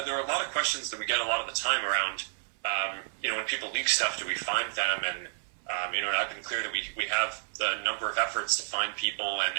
there are a lot of questions that we get a lot of the time around, when people leak stuff, do we find them? And, and I've been clear that we have a number of efforts to find people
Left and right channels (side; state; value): left; silent; 58 dB below the other